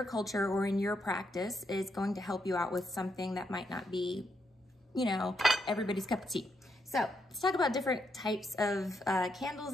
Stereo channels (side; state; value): both; normal; correlation 0.79